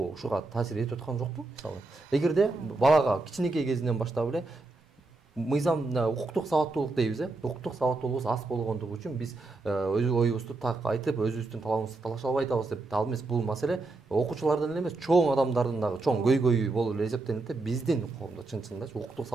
ушуга таасир этип аткан жокпу? Мисалы, эгерде балага кичинекей кезинен баштап эле мыйзам укуктук сабаттуулук дейбиз, укуктук сабаттуулугубуз аз болгондугу үчүн биз өз оюбузду так айтып, өзүбүздүн талабыбызды талаша албай атабыз деп, ал эмес бул маселе окуучулардын эле эмес, чоң адамдардын дагы чоң көйгөйү болуп эле эсептелинет да, биздин коомдо чын-чынында укуктук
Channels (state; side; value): quieter; left; 3.3 dB